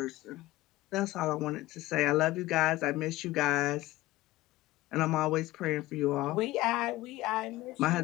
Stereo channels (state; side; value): quieter; right; 17.6 dB